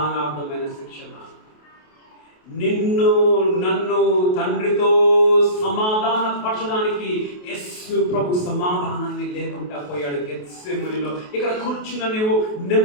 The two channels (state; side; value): late; right; 28 ms